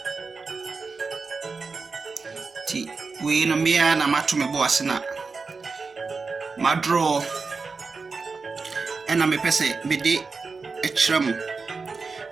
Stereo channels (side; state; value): left; quieter; 4.5 dB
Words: ti we no mea na mato me boase na madro ena me pese me de ekyerɛ mu